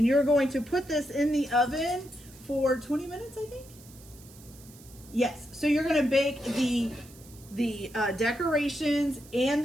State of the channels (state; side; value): noise; right; hiss, 22 dB below the sound